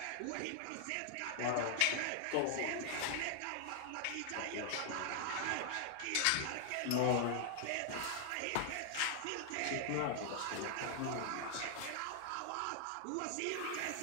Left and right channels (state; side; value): different; both; correlation 0.00